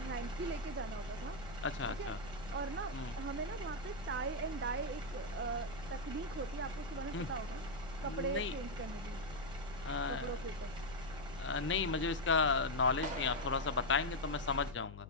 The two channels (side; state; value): left; noise; hum, 13 dB below the sound